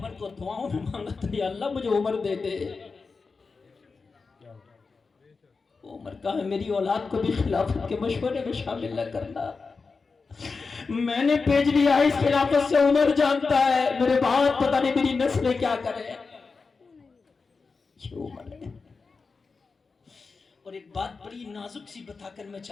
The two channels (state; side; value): quieter; right; 4.5 dB